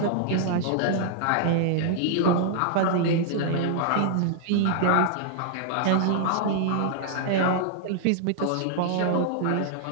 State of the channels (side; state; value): both; different; correlation -0.01